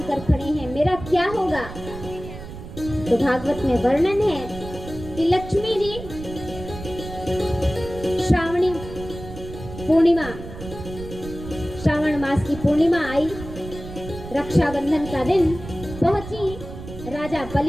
खड़े हैं, मेरा क्या होगा? तो भागवत में वर्णन है कि लक्ष्मी जी श्रावणी पूर्णिमा, श्रावण मास की पूर्णिमा आई, रक्षाबंधन का दिन पहुंची राजा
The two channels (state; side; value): noise; right; rumble, 12 dB below the sound